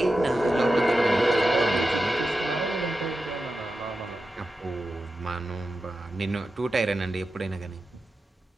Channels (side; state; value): both; normal; correlation 0.92